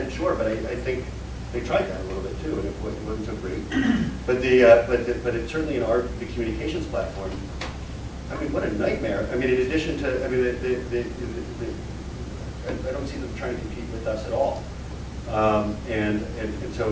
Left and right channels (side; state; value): both; identical; correlation 1.00